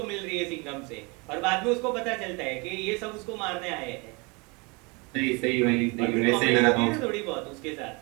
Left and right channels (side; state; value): left; quieter; 28.8 dB